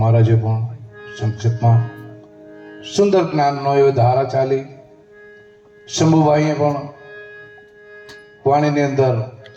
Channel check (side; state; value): both; identical; correlation 1.00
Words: મહારાજે પણ સંક્ષેપમાં સુંદર જ્ઞાનનો એવો ધારા ચાલી. શંભુભાઈએ પણ વાણીની અંદર